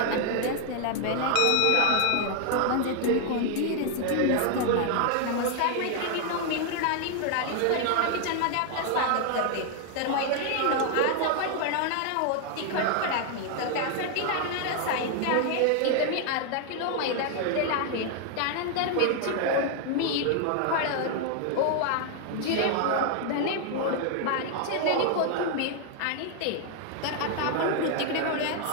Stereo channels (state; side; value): different; both; correlation 0.00